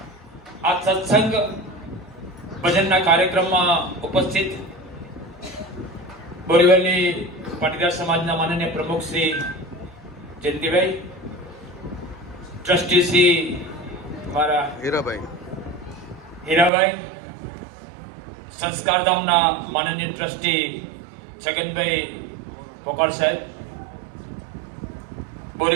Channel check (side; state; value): left; drops out; at 16.7 s